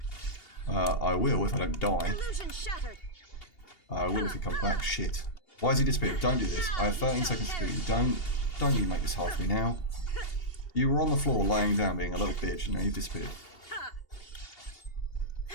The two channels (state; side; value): late; right; 2.8 ms